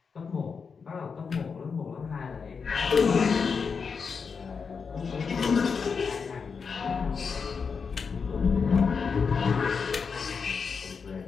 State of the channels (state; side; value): quieter; right; 5.6 dB